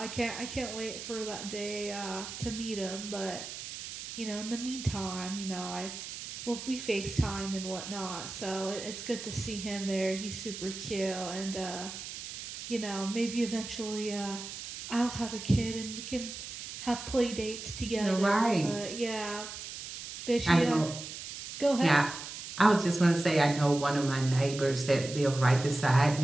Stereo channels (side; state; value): right; noise; hiss, 9 dB below the sound